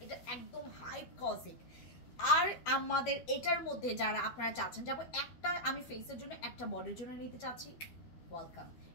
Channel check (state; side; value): late; right; 12 ms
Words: এটা একদম হাইপোক্সিক। আর আমাদের এটার মধ্যে যারা আপনারা চাচ্ছেন যাবো একটা আমি ফেসের জন্য একটা বডির জন্য নিতে চাচ্ছি, ওয়েলকাম।